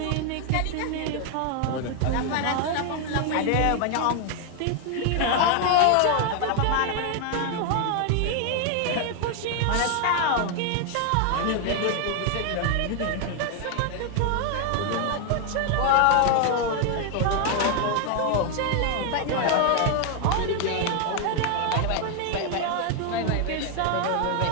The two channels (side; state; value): both; different; correlation 0.00